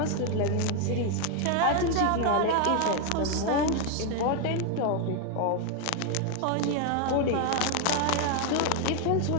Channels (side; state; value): both; different; correlation 0.00